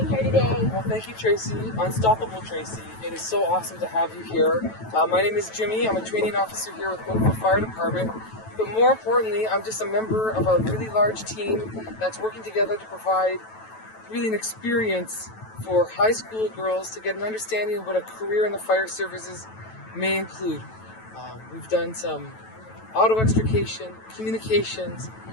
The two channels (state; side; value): late; right; 9.1 ms